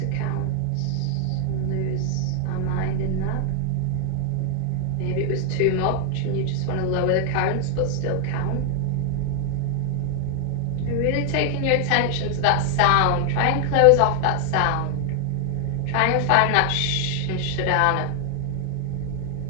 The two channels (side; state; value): both; different; correlation 0.00